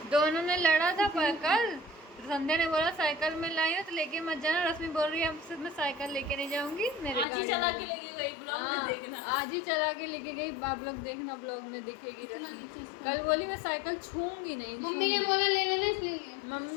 दोनों ने लड़ा था पर कल संध्या ने बोला साइकिल में लाई हो तो लेके मत जाना। रश्मि बोल रही है अब मैं साइकिल लेके नहीं जाऊंगी, मेरे आज ही गाड़ी चला में। के लेके गई, ब्लॉग में हाँ, देखना। आज ही चला के लेके गई, आप लोग देखना ब्लॉग में दिखेगी रश्मि। कल बोली मैं साइकिल छूंगी नहीं, मम्मी ने बोला ले लेना इसलिए।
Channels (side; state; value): right; drops out; at 7.2 s